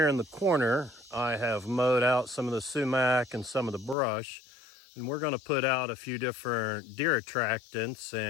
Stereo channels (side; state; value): right; drops out; at 4.0 s